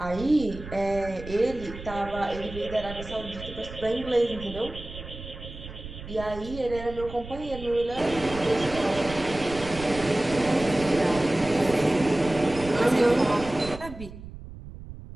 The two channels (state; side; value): noise; right; rumble, 13 dB below the sound